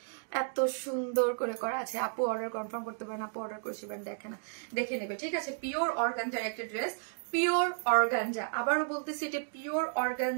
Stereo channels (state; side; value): silent; left; digital silence